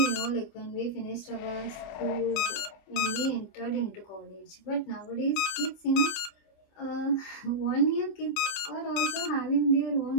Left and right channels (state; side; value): late; right; 26 ms